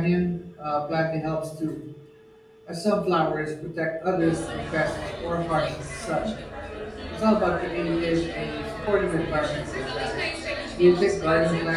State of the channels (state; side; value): identical; both; correlation 1.00